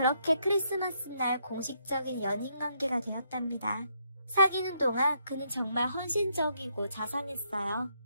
크리스마스 날 공식적인 연인 관계가 되었답니다. 사귀는 동안 그는 정말 헌신적이고 자상했어요.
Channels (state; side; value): inverted; both; correlation -0.75